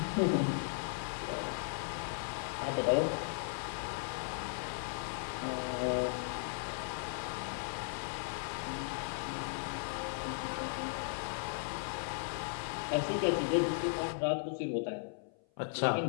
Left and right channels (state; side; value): silent; right; 53 dB below the other